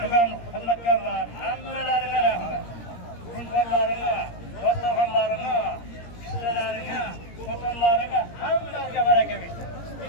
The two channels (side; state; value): right; late; 17 ms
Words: xizmatkorlar hammalariga rahmat. Insonlarga, dostonlarimga, ishchilarga, xotinlarga hammalariga baraka bersin.